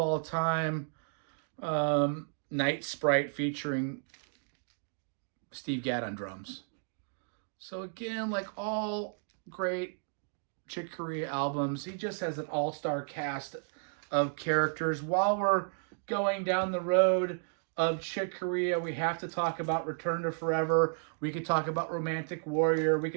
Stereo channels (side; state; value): left; silent; digital silence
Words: time, Night Sprite featuring Steve Gadd on drums. So again, like all great Chick Corea albums, he just has an all-star cast of characters. While we're going down the road of Chick Corea, we have to talk about Return to Forever. We could talk about Romantic Warrior. We